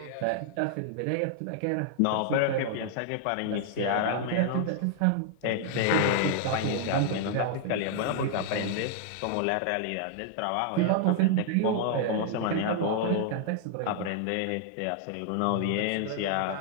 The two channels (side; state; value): both; different; correlation 0.00